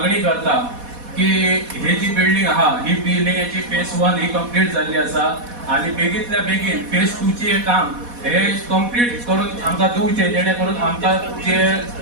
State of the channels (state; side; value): late; left; 4.1 ms